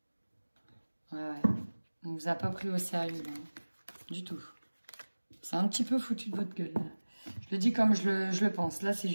Ouais. On vous a pas pris au sérieux. Hein. Du tout. C'est un petit peu foutu de votre gueule. Là. Je le dis comme je le pense. Là, c'est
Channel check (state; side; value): inverted; both; correlation -1.00